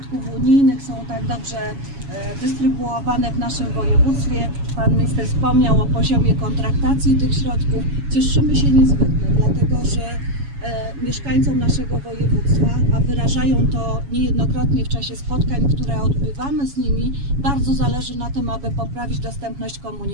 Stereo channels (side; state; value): left; late; 7.2 ms